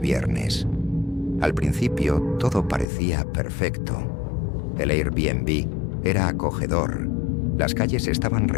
Al principio todo parecía perfecto. El Airbnb era acogedor, las calles estaban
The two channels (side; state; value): right; drops out; at 2.9 s